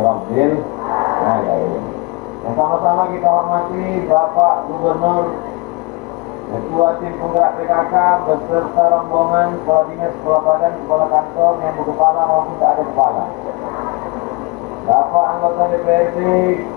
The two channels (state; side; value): quieter; right; 26.5 dB